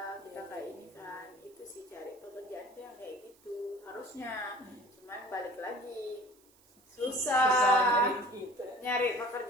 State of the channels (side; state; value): right; noise; hiss, 29 dB below the sound